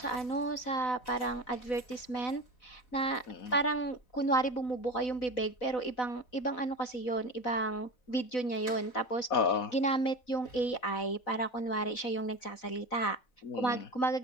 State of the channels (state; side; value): late; right; 4.0 ms